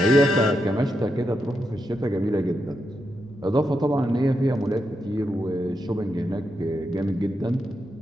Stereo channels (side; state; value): both; normal; correlation 0.85